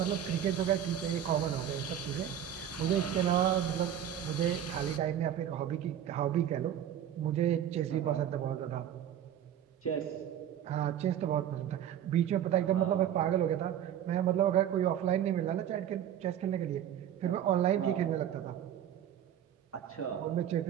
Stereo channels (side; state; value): left; quieter; 10.1 dB